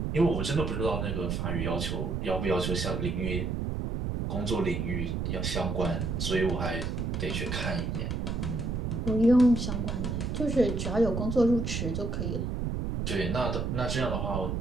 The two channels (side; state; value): right; noise; rumble, 1 dB below the sound